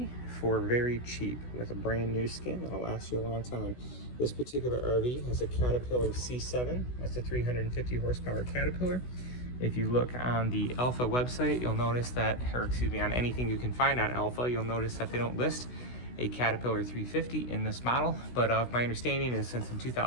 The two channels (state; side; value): late; right; 16 ms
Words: for very cheap with a brand new skin that'll last you a long time. This particular RV has a Caterpillar C7. That's a 350 horsepower Caterpillar. If you look on the Alpha website, you'll notice that, or excuse me, on anything you can find on Alpha, you'll notice that they don't list a Caterpillar 350 in this model. But my understanding is since in